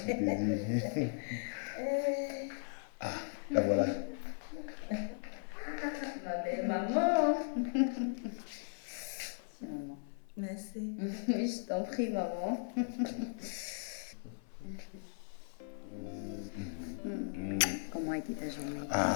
Ah, la voilà. Ma belle maman. Tiens, maman. Merci. Oui, je t'en prie, maman. Comment a été ta journée?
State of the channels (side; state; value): right; silent; 53 dB below the other